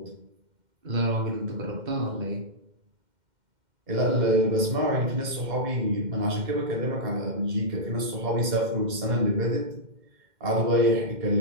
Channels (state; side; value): late; left; 2.1 ms